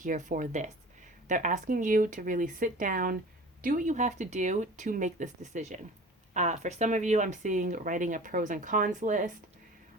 for this. They're asking you to really sit down, do what you have to do to make this decision. For some of you, I'm seeing writing a pros and cons list.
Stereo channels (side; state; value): both; normal; correlation 0.40